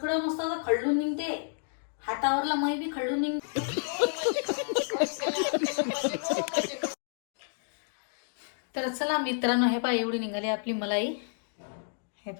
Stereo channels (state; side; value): silent; right; digital silence